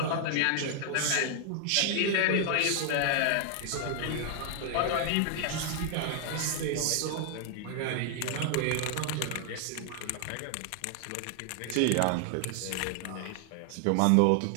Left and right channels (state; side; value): different; both; correlation 0.00